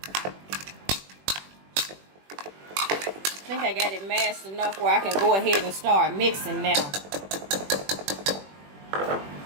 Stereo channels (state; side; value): late; left; 21 ms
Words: I think I got it mashed enough where I can go ahead and start mixing now.